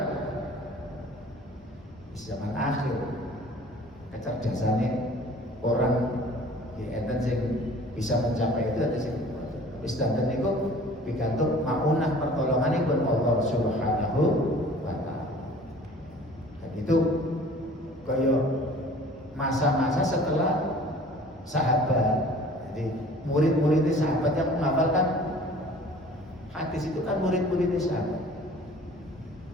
zaman akhir kecerdasannya orang ya enten sing bisa mencapai itu ada sing wis danten niku pikantuk maunah pertolonganipun Allah Subhanahu setelah sahabat. Jadi murid-muridnya sahabat yang menghafalkan hadis itu kan murid-muridnya sahabat.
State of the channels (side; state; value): both; normal; correlation 0.48